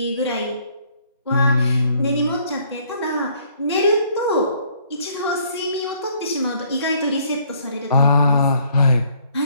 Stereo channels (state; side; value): inverted; both; correlation -0.63